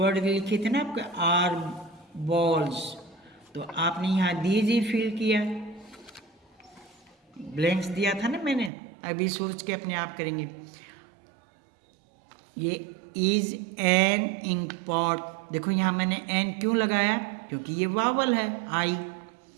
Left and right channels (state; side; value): drops out; left; at 8.7 s